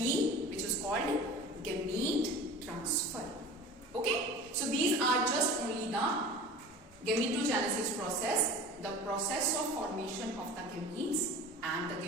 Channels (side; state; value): both; normal; correlation 0.38